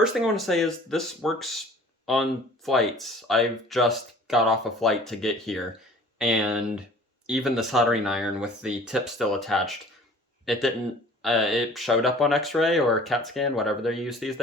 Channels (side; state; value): both; normal; correlation 0.48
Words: thing I want to say is this works on flights. I've just got off a flight to get here, and even the soldering iron with the tip still attached, it didn't, it showed up on x-ray or CAT scan, whatever they use these